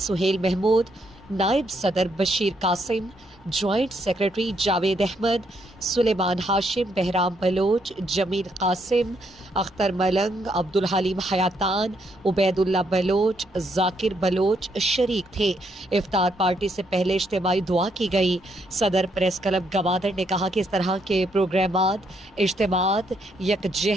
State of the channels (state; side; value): normal; both; correlation 0.74